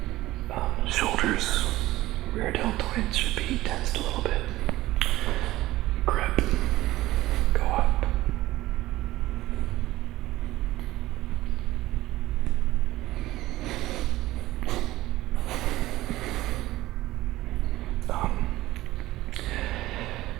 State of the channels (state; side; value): quieter; left; 16.8 dB